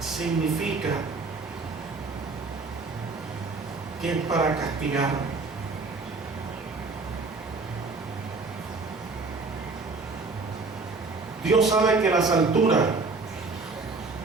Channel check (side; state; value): left; quieter; 3.8 dB